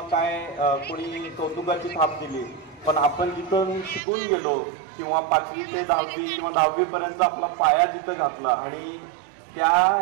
काय कोणी कौतुकाची थाप दिली, पण आपण जिथं शिकून गेलो किंवा 5वी ते 10वी किंवा 10वी पर्यंत आपला पाया जिथं घातला आणि त्या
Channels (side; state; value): left; drops out; at 4.0 s